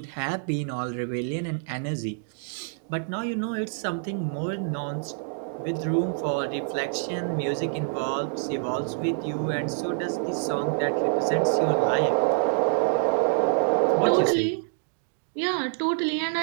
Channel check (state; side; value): silent; left; digital silence